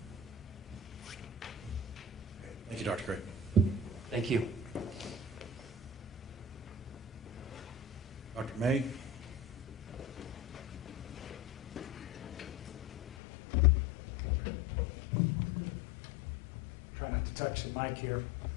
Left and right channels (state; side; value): drops out; right; at 13.2 s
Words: Thank you, Dr. Gray. Thank you. Dr. May? Try not to touch the mic here.